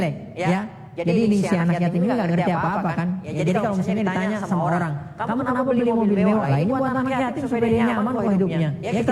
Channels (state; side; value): identical; both; correlation 1.00